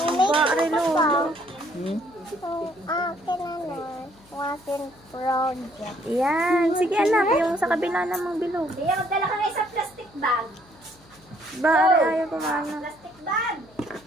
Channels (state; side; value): noise; left; hum, 28 dB below the sound